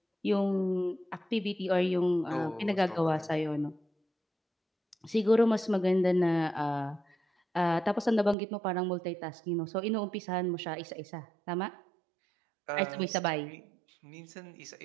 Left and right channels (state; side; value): drops out; left; at 8.3 s